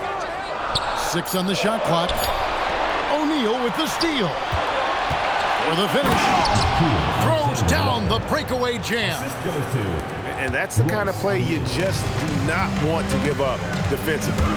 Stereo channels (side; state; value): both; identical; correlation 1.00